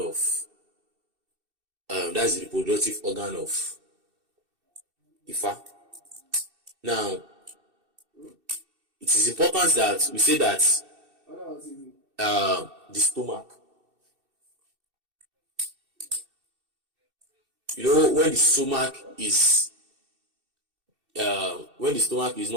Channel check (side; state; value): left; late; 2.7 ms